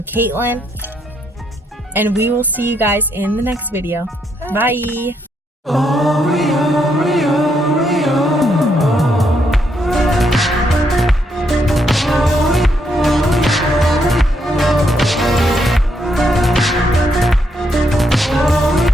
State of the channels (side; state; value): both; normal; correlation 0.76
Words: Kaitlyn. and we will see you guys in the next video. Bye. Oh, we are.